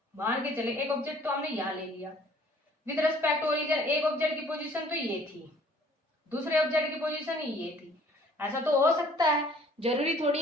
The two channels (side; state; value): both; normal; correlation 0.56